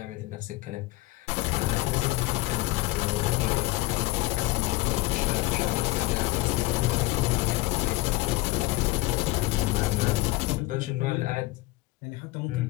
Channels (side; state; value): right; quieter; 19.6 dB